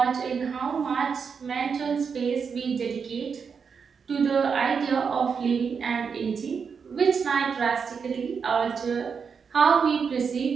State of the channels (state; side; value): quieter; left; 6.0 dB